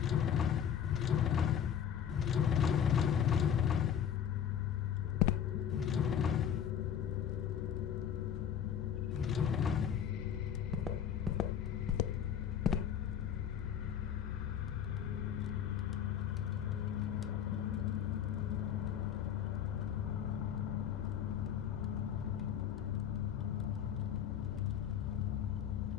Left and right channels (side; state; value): right; quieter; 8.8 dB